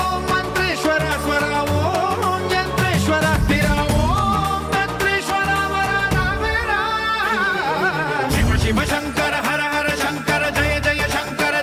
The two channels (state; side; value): identical; both; correlation 1.00